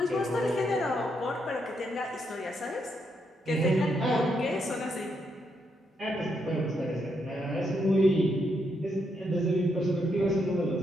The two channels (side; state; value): both; normal; correlation 0.78